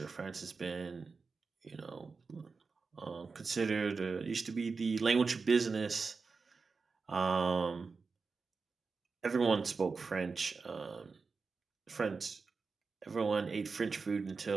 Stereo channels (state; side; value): quieter; left; 4.6 dB